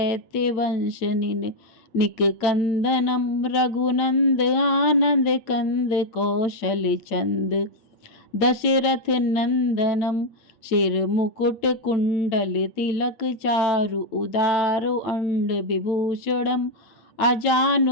वंश निक कंदनम, रघुनंद आनंद कंद कौशल चंद, दशरथ नंदनम, शिर मुकुट कुंडल तिलक चारु उदारु अंड विभूषणम,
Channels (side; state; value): right; late; 9.0 ms